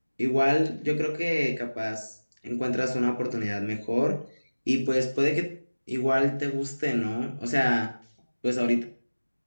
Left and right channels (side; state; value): both; inverted; correlation -1.00